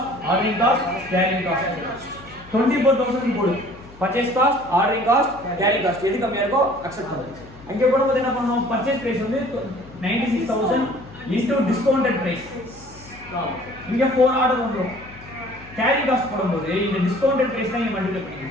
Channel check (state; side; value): noise; left; hum, 21 dB below the sound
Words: ordering cost carrying cost 24,000 போடு purchase cost ordering cost carrying cost எது கம்மியா இருக்கோ அக்செப்ட் பண்ணு அங்க போடும்போது என்ன பண்ணனும் பர்ச்சேஸ் பிரைஸ் வந்து 96,000 இன்டு டிஸ்கவுண்டட் பிரைஸ் இங்க 4 ஆர்டர் வந்துரும் கேரிங் காஸ்ட் போடும்போது இந்த டிஸ்கவுண்டட் பிரைஸ் தான் இங்க மல்டிப்ளை